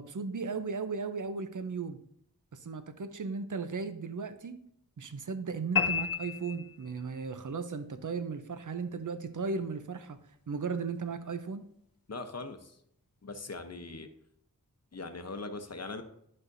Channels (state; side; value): normal; both; correlation -0.02